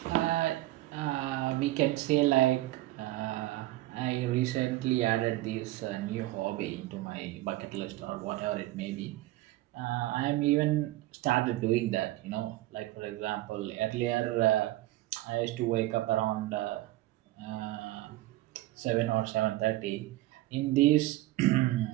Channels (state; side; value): quieter; left; 17.2 dB